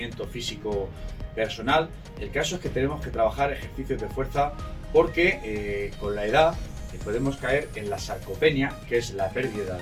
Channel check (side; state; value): both; identical; correlation 1.00